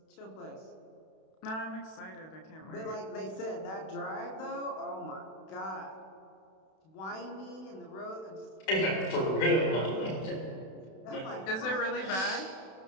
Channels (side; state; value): right; late; 32 ms